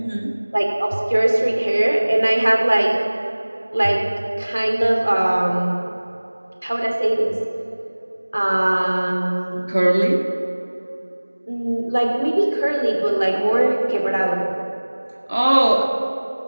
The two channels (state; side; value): inverted; both; correlation -1.00